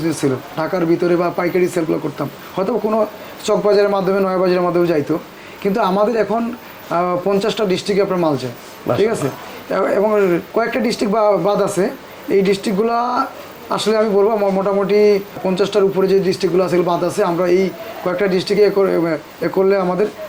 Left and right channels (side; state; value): both; identical; correlation 1.00